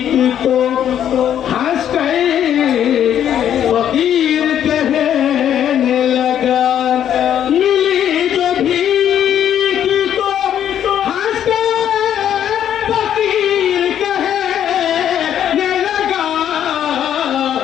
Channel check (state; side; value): quieter; right; 10.0 dB